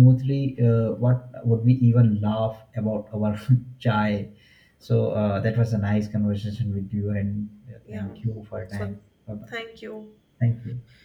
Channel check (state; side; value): identical; both; correlation 1.00